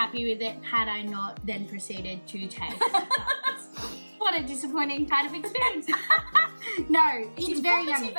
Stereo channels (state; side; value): inverted; both; correlation -1.00